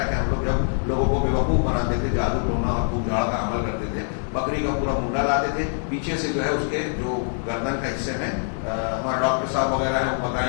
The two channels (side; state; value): right; silent; 63 dB below the other